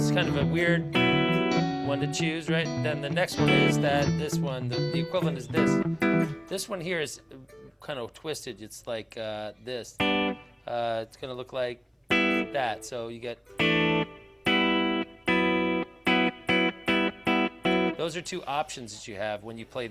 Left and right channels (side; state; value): both; identical; correlation 1.00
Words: kind of a weird one to choose, right? Then the next one is this one, the equivalent is this. This one here is kind of twisted. It's like this. It's going to look like that. So you get. Those are 2 options that you have when you play